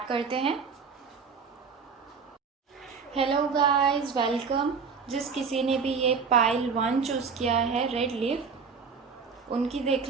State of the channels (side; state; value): left; quieter; 5.5 dB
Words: करते हैं। Hello guys, welcome. जिस किसी ने भी ये पाइल 1 चूज़ किया है, रेड लीफ, उनकी देख